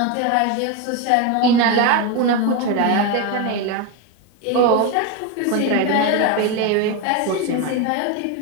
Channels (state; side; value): different; both; correlation 0.03